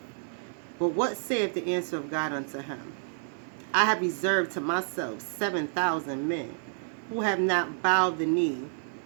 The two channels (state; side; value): silent; left; digital silence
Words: But what saith the answer of God unto him? I have reserved to myself 7,000 men, who have not bowed the knee